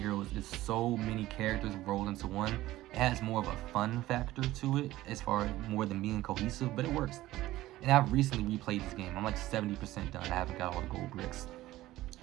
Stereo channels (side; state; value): left; quieter; 16.2 dB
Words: is so many characters rolled into one. It has more of a fun factor to it as far as more than being cohesive, but it works. And I've recently replayed this game. I'm like 70% done. I haven't got all the gold bricks.